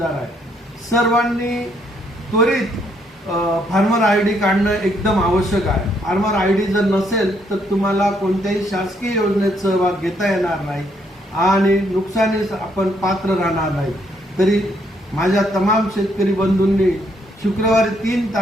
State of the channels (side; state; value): both; normal; correlation 0.71